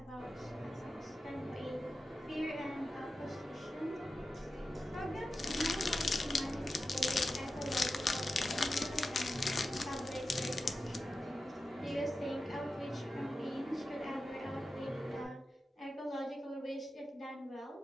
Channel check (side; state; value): both; normal; correlation 0.92